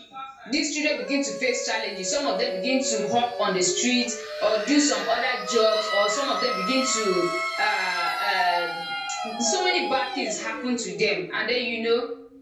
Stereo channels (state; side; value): identical; both; correlation 1.00